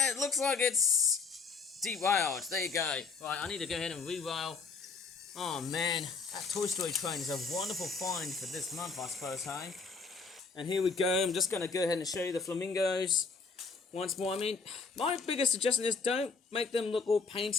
it looks like it's derailed. There you go. Right, I need to go ahead and re-rail. Oh man, that Toy Story train is a wonderful find for this month, I suppose, hey? And here we go. I'm just going to go ahead and show you the flamingos once more. I mean, my biggest suggestion is don't make them look all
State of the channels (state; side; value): quieter; right; 4.7 dB